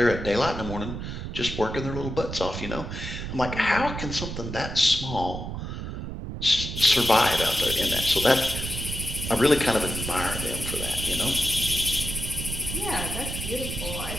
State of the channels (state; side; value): noise; right; rumble, 6 dB below the sound